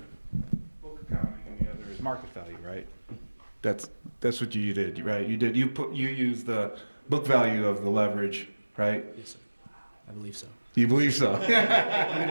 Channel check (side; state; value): both; inverted; correlation -1.00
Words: book accounting, and the other is market value, right? That's what you did, right? You used the book value of the leverage, right? Yes, sir. I believe so. You believe so?